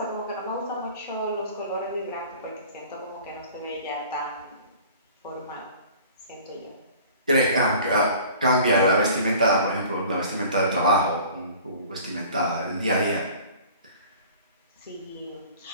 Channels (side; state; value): both; inverted; correlation -0.46